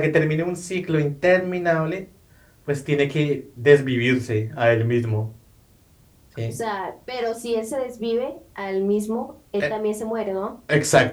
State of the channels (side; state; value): both; identical; correlation 1.00